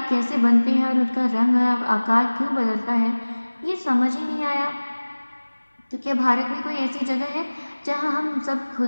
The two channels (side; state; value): both; inverted; correlation -1.00